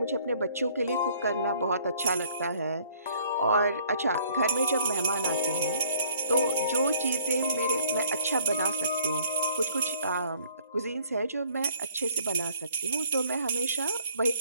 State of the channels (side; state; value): both; inverted; correlation -0.59